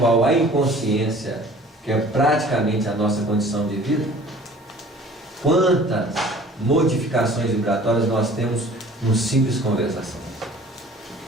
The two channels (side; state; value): both; normal; correlation 0.48